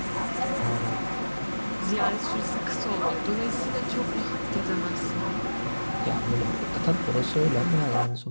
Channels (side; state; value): both; inverted; correlation -1.00